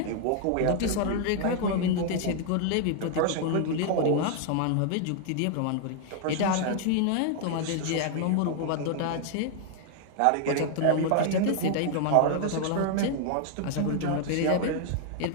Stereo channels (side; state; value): both; different; correlation 0.00